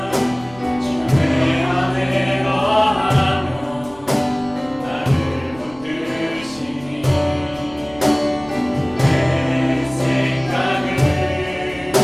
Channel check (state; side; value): noise; right; rumble, 23 dB below the sound